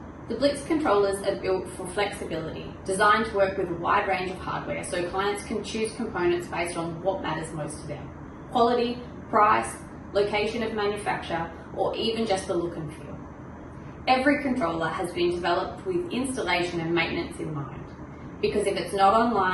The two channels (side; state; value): both; identical; correlation 1.00